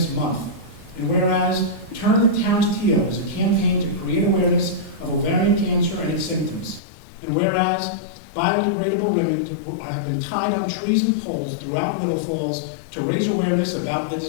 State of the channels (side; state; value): right; drops out; at 6.8 s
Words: Month, and whereas Turn the Town's Teal is a campaign to create awareness of ovarian cancer and its symptoms, and whereas biodegradable ribbon have been tied on trees and poles throughout Little Falls to raise awareness about the